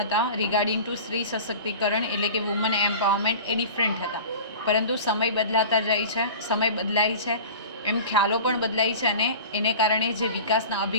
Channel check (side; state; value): both; inverted; correlation -0.37